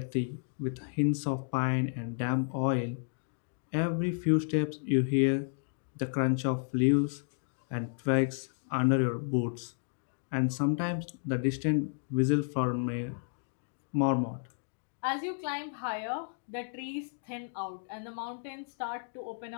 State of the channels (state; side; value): silent; right; digital silence